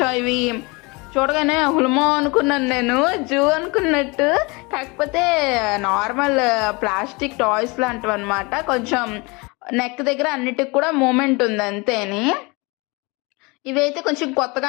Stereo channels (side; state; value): right; quieter; 26.9 dB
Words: ఇవి చూడగానే హుల్మో అనుకున్నాను, నేను జూ అనుకున్నట్టు. కాకపోతే నార్మల్ ప్లాస్టిక్ టాయ్స్ లాంటివి అనమాట. కొంచెం నెక్ దగ్గర అన్నిటికి కూడా మూమెంట్ ఉంది అంతేని. ఇవైతే కొంచెం కొత్తగా